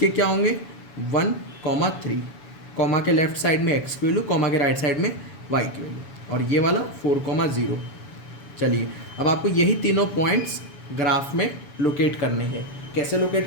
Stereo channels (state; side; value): late; right; 7.0 ms